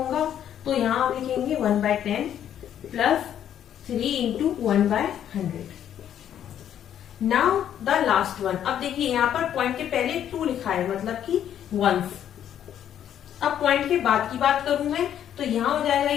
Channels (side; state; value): right; quieter; 10.1 dB